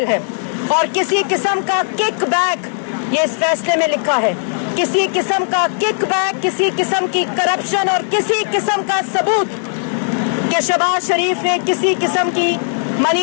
है। और किसी किस्म का किक बैक, ये इस फैसले में लिखा है, किसी किस्म का किक बैक, किसी किस्म की करप्शन और किसी किस्म का सबूत कि शहबाज शरीफ ने किसी किस्म की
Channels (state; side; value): silent; right; digital silence